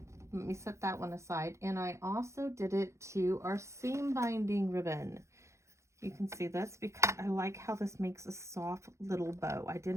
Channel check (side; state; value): left; late; 0.14 ms